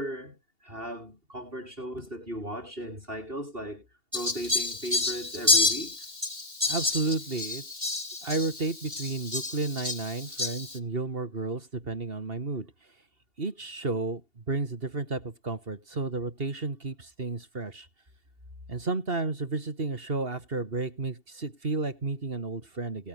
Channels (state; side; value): late; left; 2.8 ms